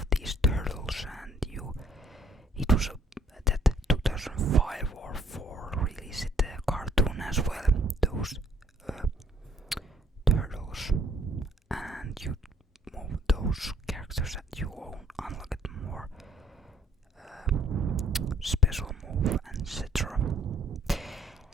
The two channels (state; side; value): normal; both; correlation 0.63